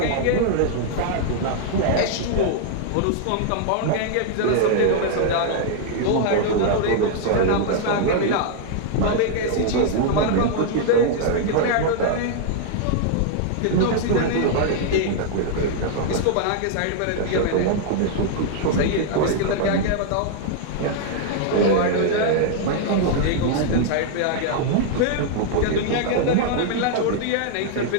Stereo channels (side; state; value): both; different; correlation -0.01